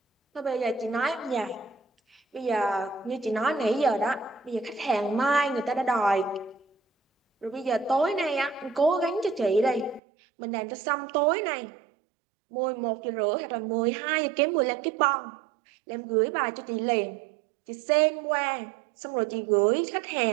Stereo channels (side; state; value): left; drops out; at 10.0 s